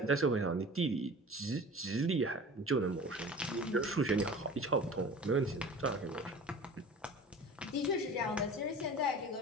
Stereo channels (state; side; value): normal; both; correlation 0.40